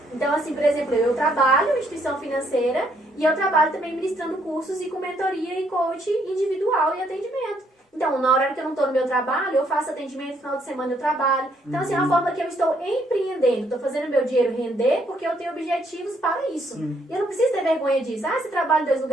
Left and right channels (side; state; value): both; normal; correlation 0.70